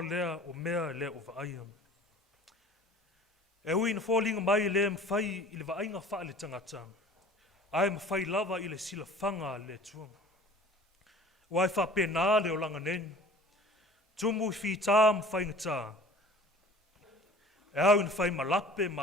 o mea lea o vaaya. E ui na fōlinga mai lea mwhai I le vainga wha le tangata. Ai mwhai lava I le sila whanga le tua. Wai wha pena le o langa nen. Tumu I whita mwhai ngata. E au na whai malape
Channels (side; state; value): both; normal; correlation 0.46